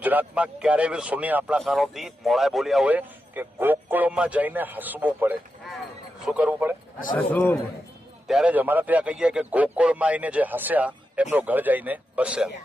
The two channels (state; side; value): normal; both; correlation 0.88